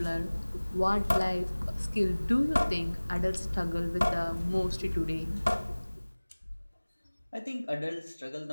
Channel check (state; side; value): inverted; both; correlation -1.00